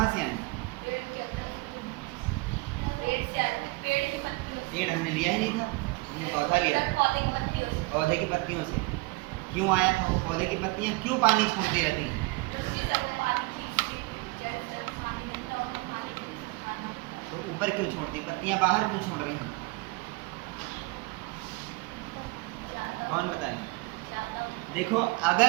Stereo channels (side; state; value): left; quieter; 24.3 dB